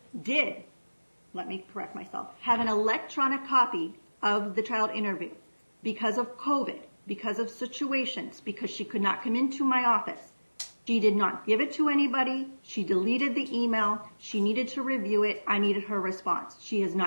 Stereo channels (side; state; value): both; inverted; correlation -1.00